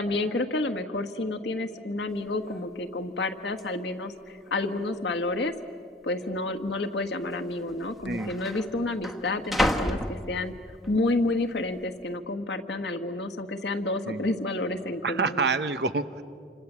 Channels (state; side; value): normal; both; correlation 0.42